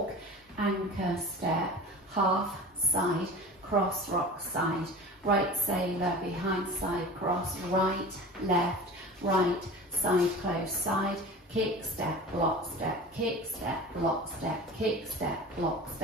anchor step, half, side, cross rock side, right sailor, behind side cross, right, left, right, side close, side, kick, step, block, step, kick, step, block, step, kick, step, block,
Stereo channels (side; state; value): both; normal; correlation 0.36